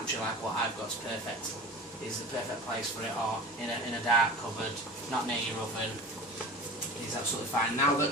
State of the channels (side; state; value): both; normal; correlation 0.35